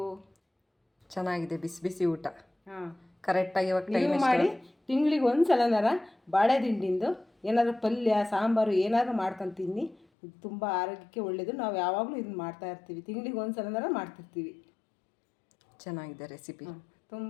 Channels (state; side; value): drops out; right; at 10.1 s